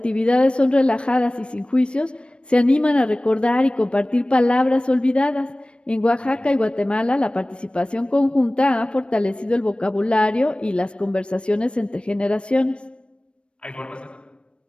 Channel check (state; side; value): late; right; 0.057 ms